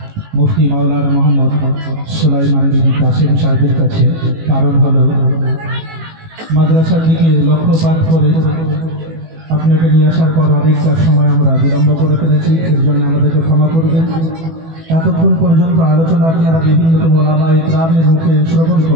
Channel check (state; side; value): late; left; 18 ms